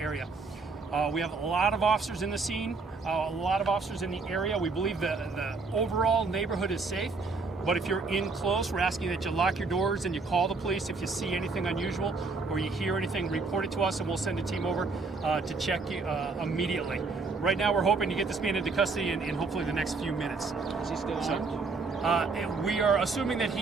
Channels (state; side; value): quieter; left; 4.1 dB